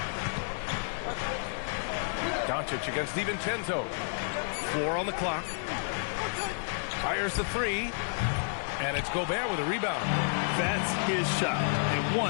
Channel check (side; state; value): right; silent; 57 dB below the other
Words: Doncic against DiVincenzo. 4 on the clock. Fires the 3. And it's Gobert with a rebound. That's his shot. And